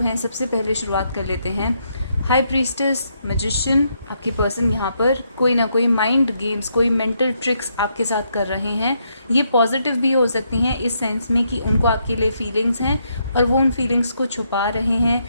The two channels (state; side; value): inverted; both; correlation -0.77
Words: हैं, सबसे पहले शुरुआत कर लेते हैं। High priestess, magician. आपके पर्सन यहाँ पर कोई ना कोई माइंड गेम्स, कोई मेंटल ट्रिक्स आपके साथ कर रहे हैं। ये पॉजिटिव भी हो सकती हैं इस सेंस में कि उनको आपके लिए फीलिंग्स हैं और वो उन फीलिंग्स को छुपा रहे हैं,